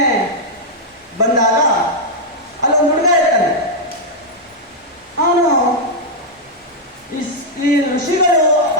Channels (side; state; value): both; normal; correlation -0.03